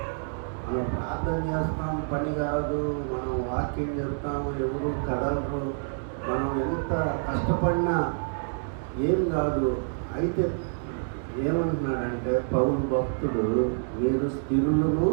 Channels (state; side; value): silent; left; digital silence